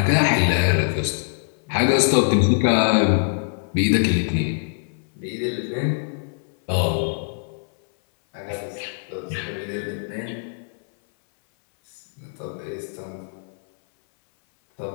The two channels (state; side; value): silent; right; 60 dB below the other